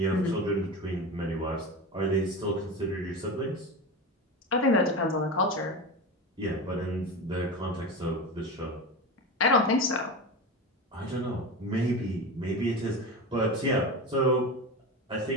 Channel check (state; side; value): normal; both; correlation 0.24